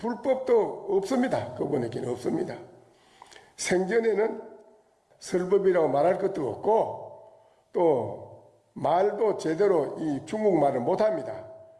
없습니다. 그분에게는 없습니다. 생전에는 설법이라고 말할 것도 없고 또 말도 제대로 이 중국말을 못합니다.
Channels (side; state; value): both; identical; correlation 1.00